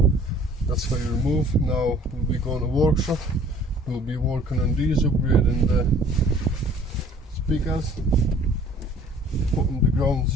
that's how you remove. Now we'll be going to workshop, we'll be working on these, upgrading the speakers, putting the ground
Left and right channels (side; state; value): both; normal; correlation 0.53